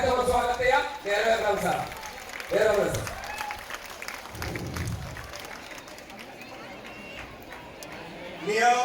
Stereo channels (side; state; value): both; identical; correlation 1.00